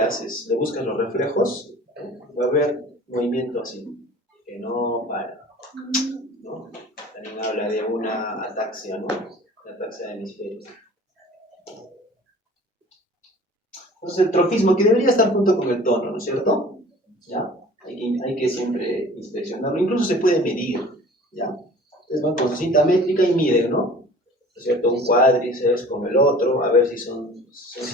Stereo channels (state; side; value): normal; both; correlation 0.46